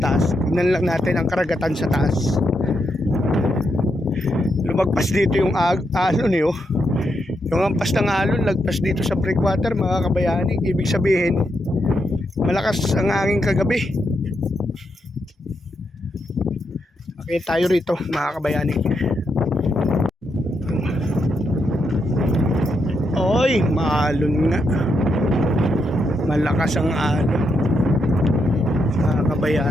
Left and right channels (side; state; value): both; normal; correlation 0.81